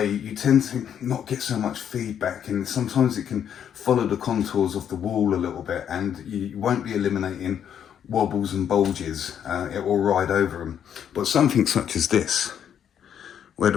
tend to not get so much feedback, and sometimes it can follow the contours of the wall a little bit, and you won't be eliminating wobbles and bulges. It will ride over them. But something such as this, where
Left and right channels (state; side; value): quieter; right; 8.9 dB